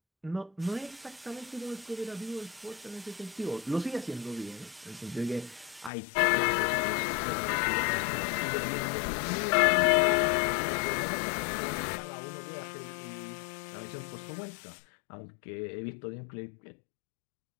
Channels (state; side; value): drops out; right; at 5.9 s